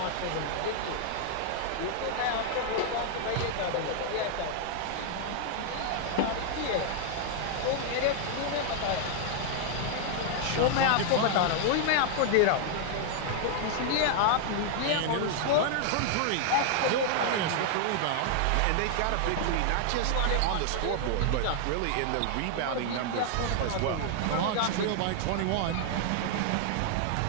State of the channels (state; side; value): different; both; correlation 0.00